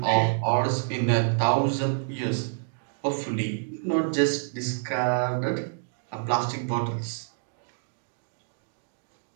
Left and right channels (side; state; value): left; silent; digital silence